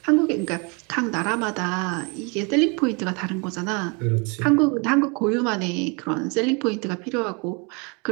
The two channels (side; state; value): left; quieter; 31.5 dB